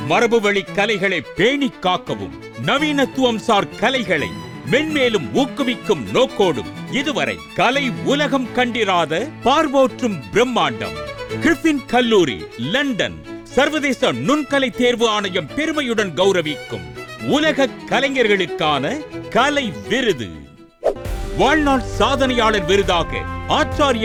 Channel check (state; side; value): identical; both; correlation 1.00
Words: மரபுவழி கலைகளை பேணி காக்கவும், நவீனத்துவம் சார் கலைகளை மென்மேலும் ஊக்குவிக்கும் நோக்கோடும் இதுவரை கலை உலகம் கண்டிராத பார்வோற்றும் பிரம்மாண்டம் கிரிஃபின் கல்லூரி லண்டன் சர்வதேச நுண்கலை தேர்வு ஆணையம் பெருமையுடன் கௌரவிக்கும் உலக கலைஞர்களுக்கான கலை விருது, வாழ்நாள் சாதனையாளர் விருதாக